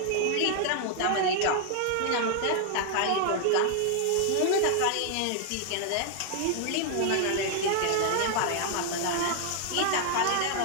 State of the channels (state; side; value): different; both; correlation 0.00